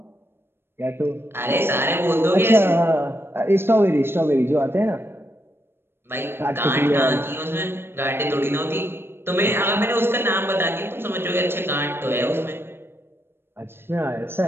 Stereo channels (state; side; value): late; left; 0.11 ms